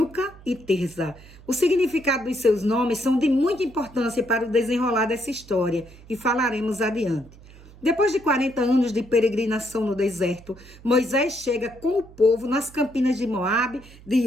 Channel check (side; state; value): right; noise; hum, 21 dB below the sound